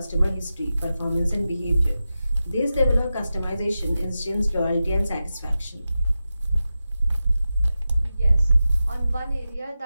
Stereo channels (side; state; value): both; inverted; correlation -0.92